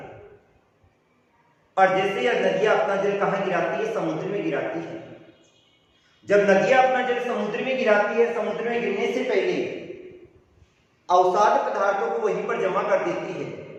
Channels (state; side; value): identical; both; correlation 1.00